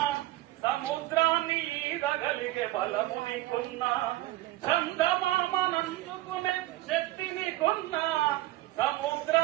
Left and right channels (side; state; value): left; quieter; 17.1 dB